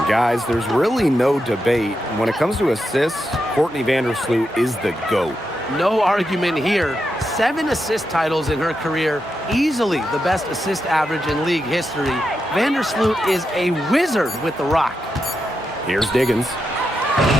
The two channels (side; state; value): both; normal; correlation 0.86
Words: Guys, there's really no debate. When it comes to assists, Courtney Vandersloot is the GOAT. No argument here. 7 assist titles in her career, easily the best assist average in league history. Vandersloot is a wizard with the rock. Here's Diggins.